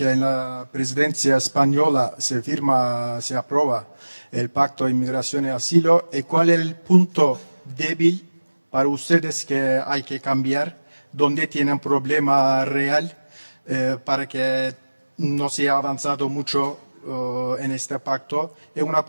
en la presidencia española se aprueba el Pacto de Inmigración y Asilo. ¿Y cuál es el punto débil para ustedes que hay que cambiar? ¿Dónde tienen problema real para que no se ha avanzado mucho en este pacto? Y una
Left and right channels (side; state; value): both; inverted; correlation -1.00